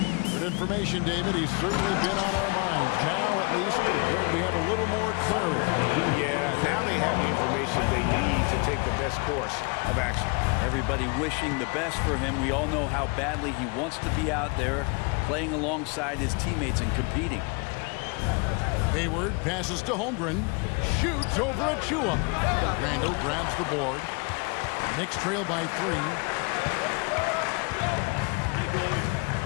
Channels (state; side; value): quieter; right; 30.9 dB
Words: Good information, David. He's certainly been on our minds. Now, at least, we have a little more clarity. Yeah, now they have the information they need to take the best course of action. Everybody wishing the best for him. We all know how badly he wants to be out there playing alongside his teammates and competing. Hayward passes to Holmgren. Shoots over Achua. Randall grabs the board. Knicks trail by 3.